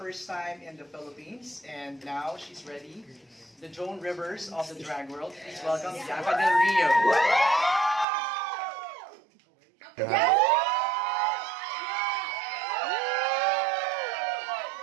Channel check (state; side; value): drops out; left; at 8.1 s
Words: time in the Philippines, and now she's ready. The Joan Rivers of the drag world. Please welcome BIANCA Del Rio.